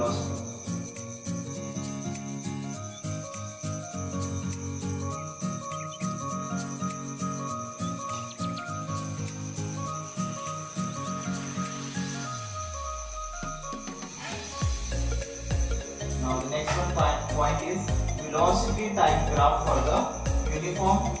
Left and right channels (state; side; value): identical; both; correlation 1.00